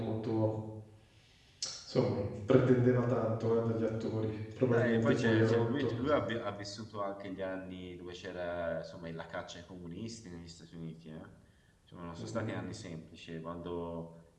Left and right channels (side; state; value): both; identical; correlation 1.00